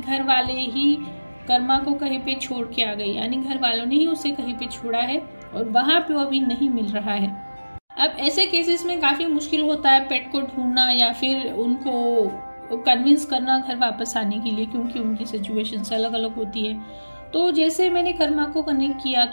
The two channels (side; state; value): both; inverted; correlation -1.00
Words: वाले ही कर्मा को कहीं पे छोड़ के आ गए, यानी घर वालों ने ही उसे कहीं पे छोड़ा है और वहां पे वो अभी नहीं मिल रहा है। अब ऐसे केसेस में काफी मुश्किल होता है पेट को ढूंढना या फिर उनको कन्विंस करना घर वापस आने के लिए, क्योंकि उनकी सिचुएशन अलग अलग होती है। तो जैसे मैंने कर्मा को कनेक्ट किया